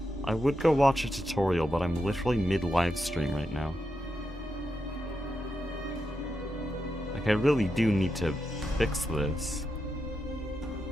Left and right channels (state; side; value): normal; both; correlation 0.86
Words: I would go watch a tutorial, but I'm literally mid-livestream right now. Like, I really do need to fix this.